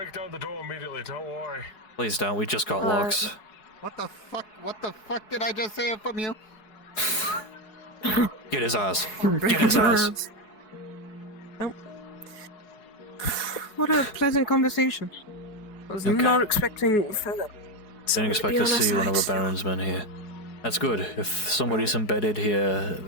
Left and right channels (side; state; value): right; late; 4.7 ms